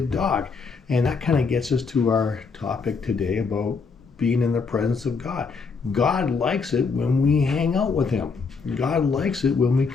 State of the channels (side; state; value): right; quieter; 4.9 dB